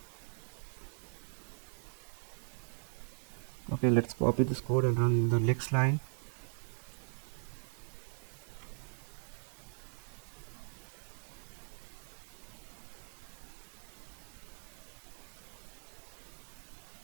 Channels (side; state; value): left; silent; digital silence